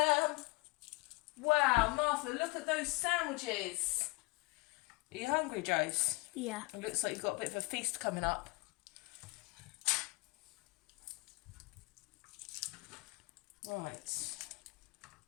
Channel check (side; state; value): right; quieter; 26.0 dB